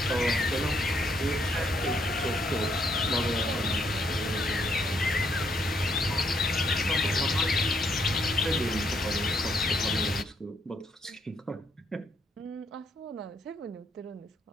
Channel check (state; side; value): normal; both; correlation 0.73